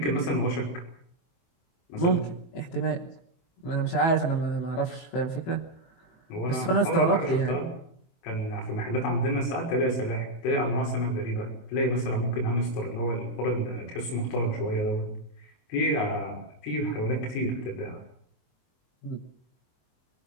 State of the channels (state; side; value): late; right; 23 ms